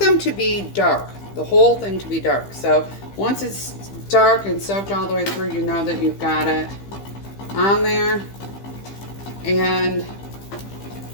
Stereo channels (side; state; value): right; late; 15 ms